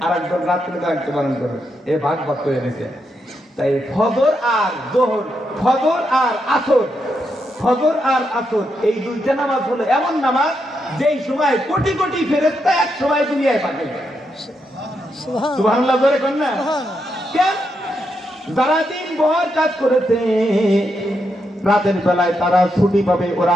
আর একদল রাত্রে দায়িত্ব পালন করবে, এ ভাগ ভাগ করে দিয়েছে। তাই ফজর আর জোহর, ফজর আর আসর, ফজর আর আসর এই দুইটা নামাজ হলো এমন নামাজ যেই সময় কোটি কোটি ফেরেশতা এক সময় দুনিয়ায় পাঠায়। সুবহানাল্লাহ বলে কোন না? কেন? যারা দিন ভর কাজ করেছে রাতের বেলায় তারা ছুটি পাবে, ওরা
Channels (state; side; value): normal; both; correlation 0.82